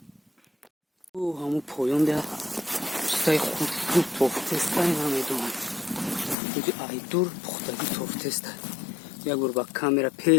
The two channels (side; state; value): right; drops out; at 6.4 s